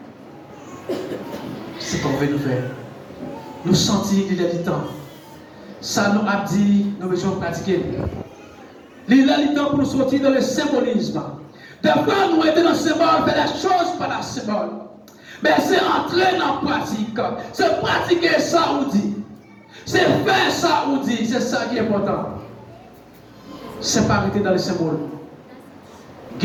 C'est ce qu'on veut nous faire. Nous sentir qu'il y a du temps. Ça nous a dit, nous devons pratiquer. Il y a du temps pour nous sortir dans le symbolisme. Des fois, nous étions dans le symbole, faire des choses par la symbole. Mais c'est entrer dans la pratique. C'est pratiquer ça ou dit. C'est faire ça ou dit. C'est ça qui est important. C'est pas arrêter dans le symbole.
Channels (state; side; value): identical; both; correlation 1.00